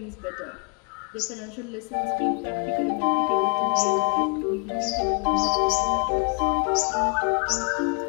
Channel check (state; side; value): quieter; right; 37.9 dB